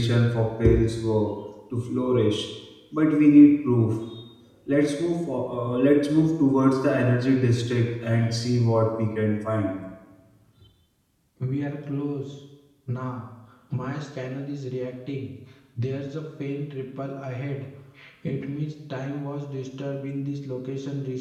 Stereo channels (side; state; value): both; identical; correlation 1.00